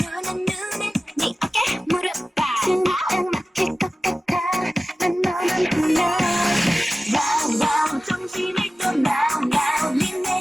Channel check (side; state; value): both; normal; correlation 0.96